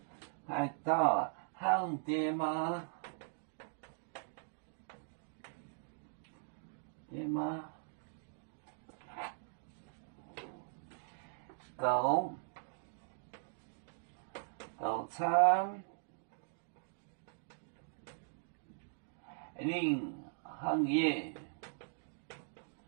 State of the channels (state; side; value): silent; left; digital silence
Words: 海盗行爹妈，爹妈，狗。早餐，零行业，